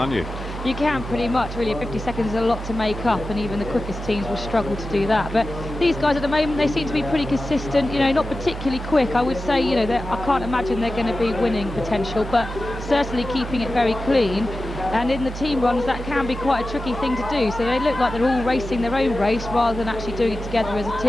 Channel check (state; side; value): normal; both; correlation 0.94